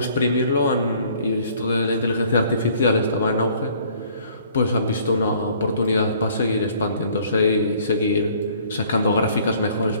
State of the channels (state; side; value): inverted; both; correlation -0.58